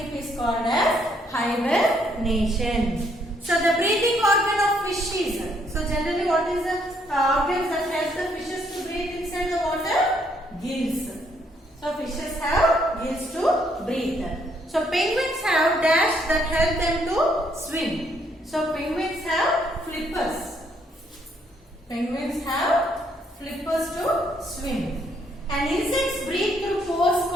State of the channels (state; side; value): normal; both; correlation 0.70